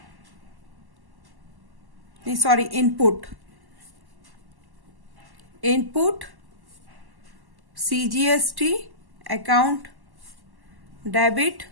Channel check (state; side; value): late; left; 1.1 ms